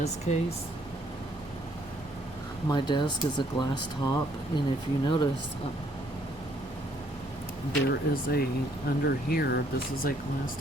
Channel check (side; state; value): both; normal; correlation 0.66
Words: case, my desk is a glass top, and if you notice, there is under here, this is a glass